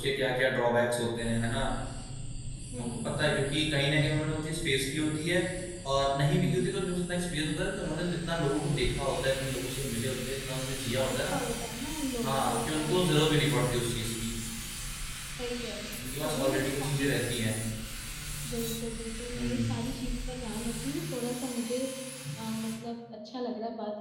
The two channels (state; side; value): identical; both; correlation 1.00